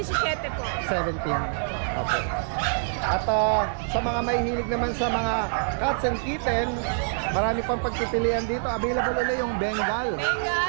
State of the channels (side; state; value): left; silent; digital silence